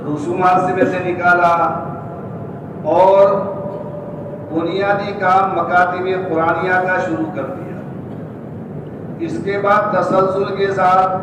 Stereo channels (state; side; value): identical; both; correlation 1.00